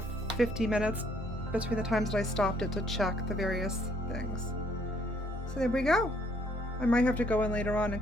50 minutes between the times that I stopped it to check the various things. So there we go. I might have to go in later on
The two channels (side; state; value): both; normal; correlation 0.66